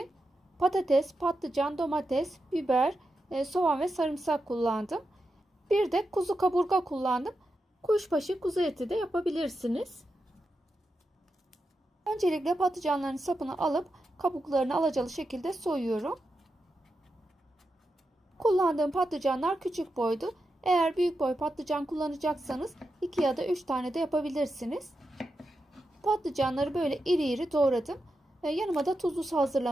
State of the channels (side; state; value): both; normal; correlation 0.88